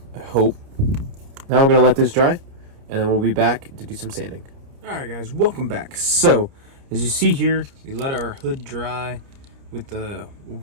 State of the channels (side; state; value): left; late; 30 ms